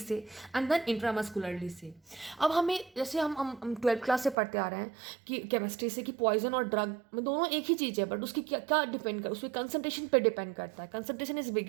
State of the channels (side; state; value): left; drops out; at 4.4 s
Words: एंड देन इंट्रामस्कुलरली से. अब हमें जैसे हम 12th क्लास से पढ़ते आ रहे हैं कि केमिस्ट्री से, कि पॉइजन और ड्रग में दोनों एक ही चीज़ है, बट उसकी क्या क्या डिपेंड कर, उसकी कंसंट्रेशन पे डिपेंड करता है. Concentration is